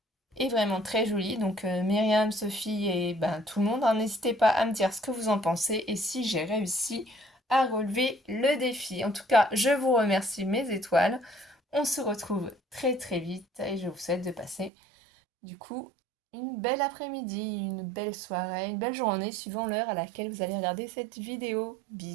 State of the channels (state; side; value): drops out; left; at 14.7 s